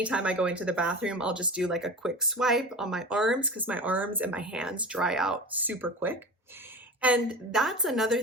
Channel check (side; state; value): both; normal; correlation 0.31